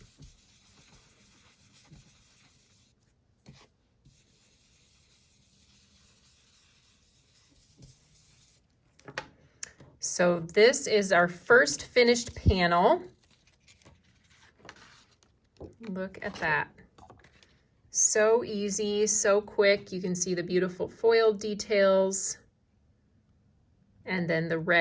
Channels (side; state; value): both; identical; correlation 1.00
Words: So this is our first finished panel. Look at that. So easy, so quick. You can see the beautiful foil details and then the